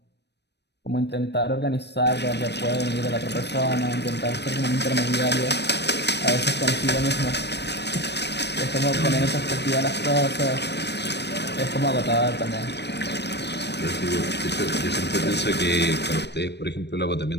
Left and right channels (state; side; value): late; right; 0.50 ms